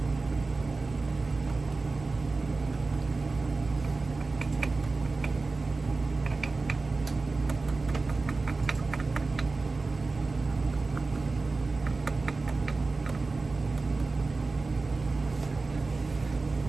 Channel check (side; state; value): left; quieter; 3.7 dB